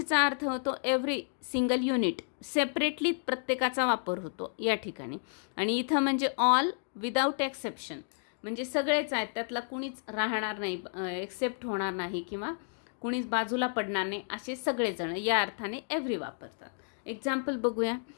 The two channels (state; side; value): silent; right; digital silence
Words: अर्थ होतो एव्हरी सिंगल युनिट, सेपरेटली प्रत्येकाचा वापर होतो या ठिकाणी. आणि इथं म्हणजे ऑल विदाऊट एक्सेप्शन, म्हणजे सगळेच आहेत, त्यातला कुणीच राहणार नाही, एक्सेप्ट होणार नाही किंवा कुणीच बाजूला पडणार नाही, असे सगळेजण या अर्थाने एव्हरी वापरतात. एक्झाम्पल बघूया.